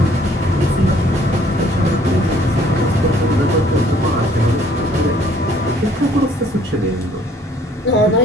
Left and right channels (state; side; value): normal; both; correlation 0.60